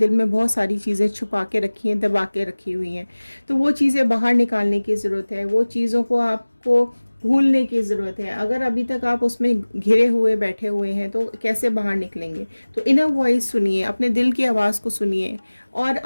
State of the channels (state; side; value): inverted; both; correlation -1.00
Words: में बहुत सारी चीज़ें छुपा के रखी हैं, दबा के रखी हुई हैं। तो वो चीज़ें बाहर निकालने की ज़रूरत है। वो चीज़ों को आपको भूलने की ज़रूरत है। अगर अभी तक आप उसमें घिरे हुए बैठे हुए हैं तो कैसे बाहर निकलेंगे। तो इनर वॉइस सुनिए, अपने दिल की आवाज़ को सुनिए और